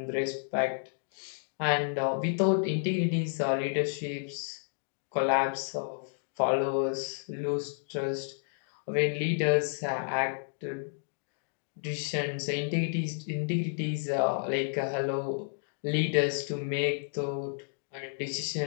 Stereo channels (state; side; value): silent; right; digital silence